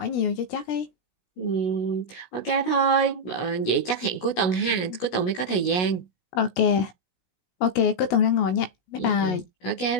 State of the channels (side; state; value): right; late; 16 ms